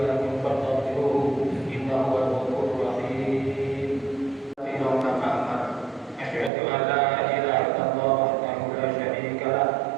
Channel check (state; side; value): drops out; left; at 6.5 s